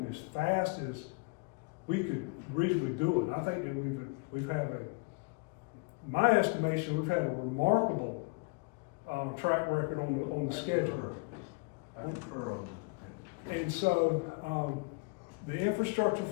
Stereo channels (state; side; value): quieter; right; 30.1 dB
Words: as fast as we could reasonably do it. I think that we've had my estimation, we've had a remarkable track record on the schedule. I concur on that. And so, the infrastructure